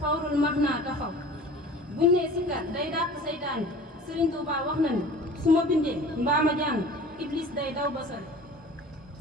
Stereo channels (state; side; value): normal; both; correlation 0.43